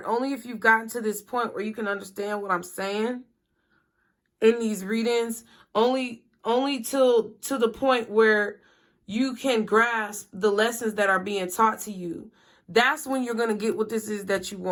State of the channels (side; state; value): both; identical; correlation 1.00